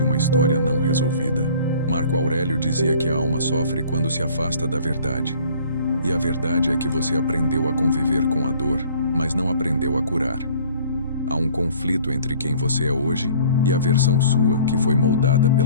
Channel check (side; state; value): both; inverted; correlation -0.52